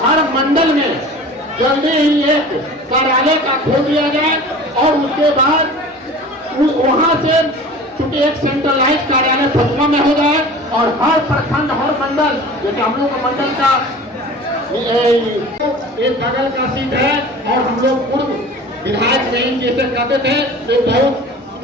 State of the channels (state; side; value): normal; both; correlation 0.40